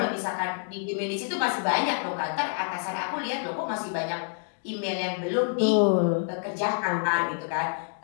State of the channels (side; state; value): right; silent; 60 dB below the other